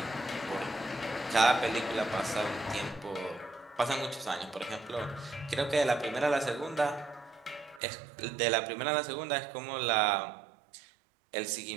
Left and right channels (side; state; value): left; drops out; at 7.8 s